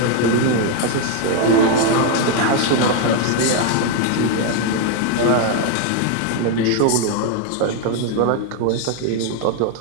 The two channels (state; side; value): different; both; correlation 0.01